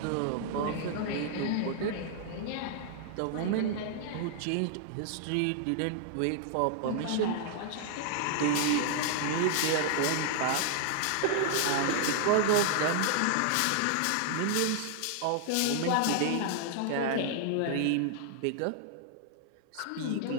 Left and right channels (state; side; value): different; both; correlation 0.00